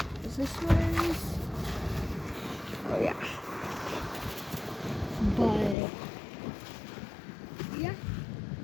Is this yours? Oh yeah. But yeah.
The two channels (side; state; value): right; drops out; at 5.8 s